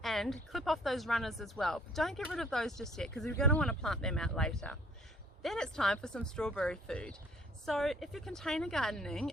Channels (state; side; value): normal; both; correlation 0.57